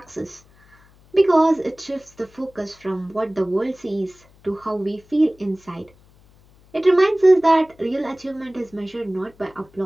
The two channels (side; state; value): left; noise; hum, 29 dB below the sound